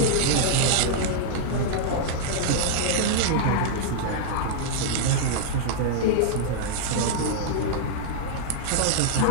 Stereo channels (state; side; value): different; both; correlation -0.01